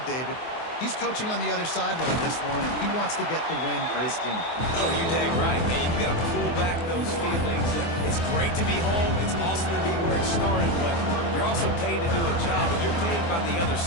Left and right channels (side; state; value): right; late; 24 ms